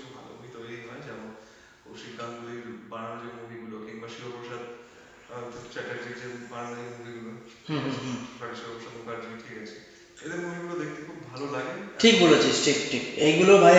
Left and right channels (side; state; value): both; identical; correlation 1.00